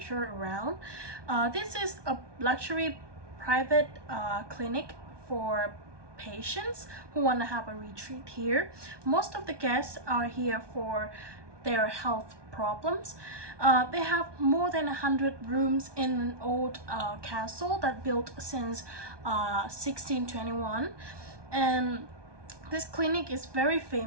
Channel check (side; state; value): left; late; 1.2 ms